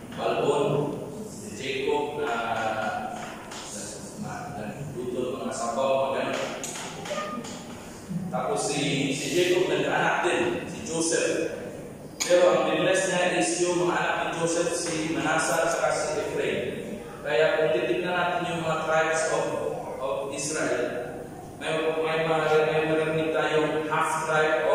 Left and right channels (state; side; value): identical; both; correlation 1.00